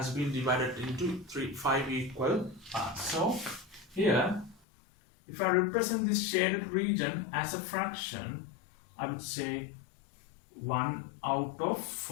been divided into 5 equal parts. So here, if I represent this shaded region as a fraction, I would say 1 out of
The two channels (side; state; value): right; drops out; at 4.6 s